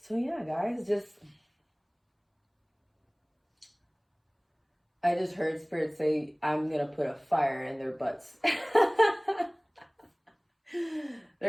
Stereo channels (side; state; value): both; identical; correlation 1.00